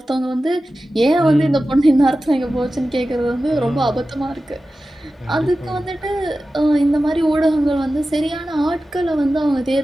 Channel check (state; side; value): normal; both; correlation 0.94